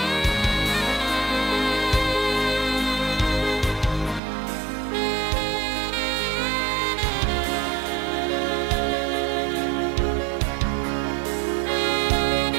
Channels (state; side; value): drops out; left; at 4.2 s